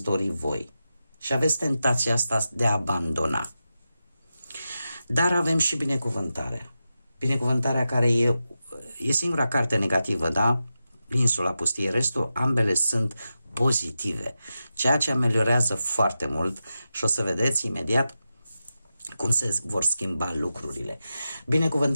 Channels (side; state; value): both; inverted; correlation -0.90